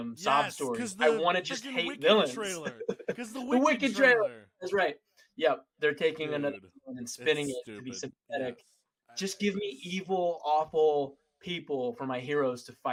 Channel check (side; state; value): both; identical; correlation 1.00